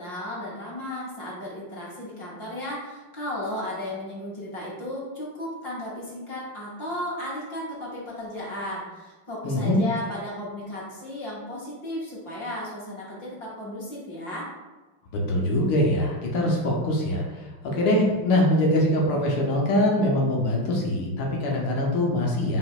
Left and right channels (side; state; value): right; late; 5.6 ms